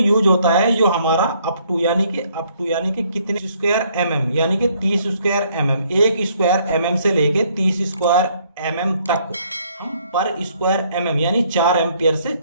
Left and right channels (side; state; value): both; inverted; correlation -0.66